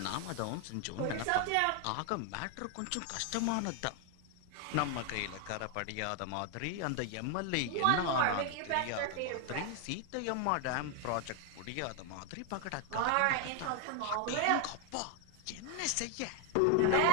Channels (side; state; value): both; different; correlation 0.01